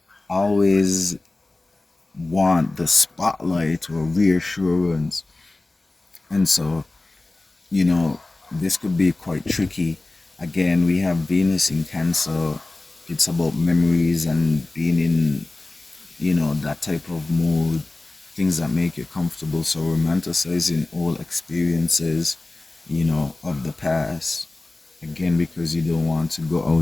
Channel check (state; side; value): quieter; right; 3.0 dB